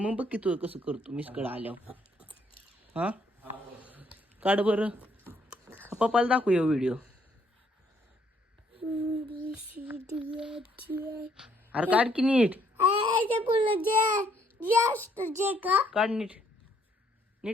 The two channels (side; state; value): both; normal; correlation 0.68